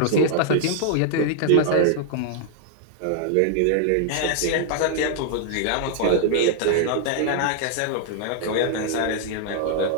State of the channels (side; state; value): both; different; correlation -0.01